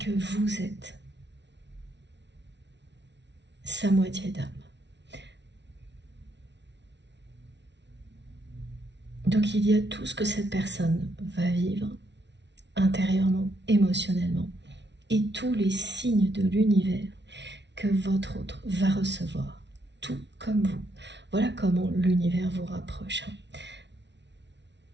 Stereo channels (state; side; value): late; left; 0.51 ms